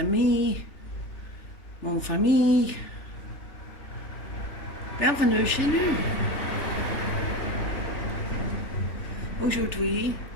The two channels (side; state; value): right; late; 3.4 ms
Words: mon famille. Bienvenue chez nous. Aujourd'hui,